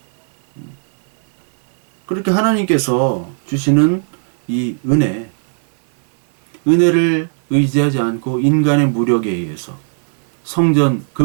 그렇게 하나님께서 주시는 이 은혜를 의지하지 않고 인간의 무력에 의해서 성전,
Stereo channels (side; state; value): left; silent; 62 dB below the other